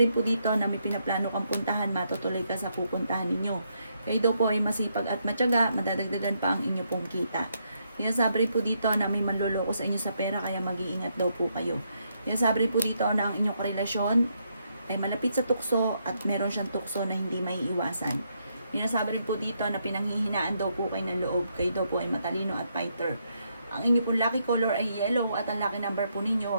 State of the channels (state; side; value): inverted; both; correlation -0.77